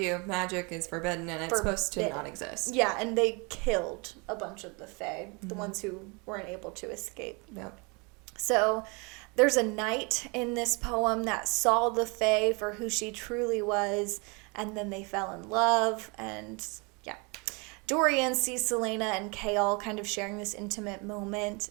magic is forbidden and it's supposed to not exist. Yeah, and they killed a bunch of the Fae, the ones who weren't able to escape. Yep. So there's a knight in this poem that saw the Fae for who she truly was, and then they fell in love, and yeah. Dorian sees Selena and Chaol kind of sharing this intimate moment,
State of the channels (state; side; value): quieter; left; 30.3 dB